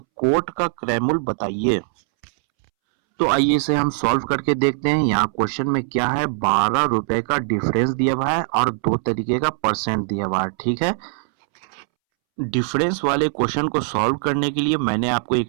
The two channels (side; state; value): left; silent; 65 dB below the other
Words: का क्रय मूल्य बताइए। तो आइए इसे हम सॉल्व करके देखते हैं। यहाँ क्वेश्चन में क्या है, 12 रुपए का डिफरेंस दिया हुआ है और 2 तरीके का परसेंट दिया हुआ है। ठीक है, डिफरेंस वाले क्वेश्चन को सॉल्व करने के लिए मैंने आपको